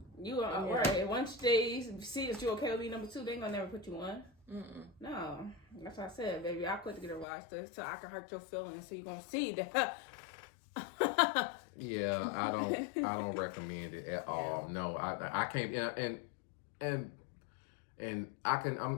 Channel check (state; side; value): drops out; right; at 7.2 s